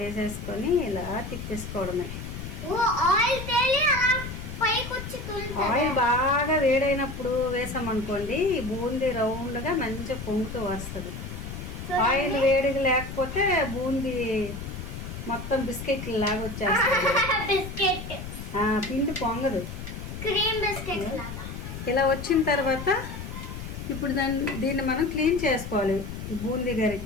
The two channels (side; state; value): left; noise; rumble, 8 dB below the sound